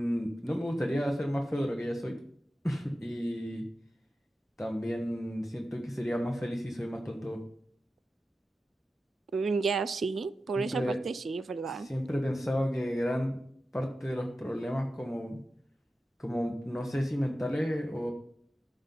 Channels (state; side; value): normal; both; correlation 0.93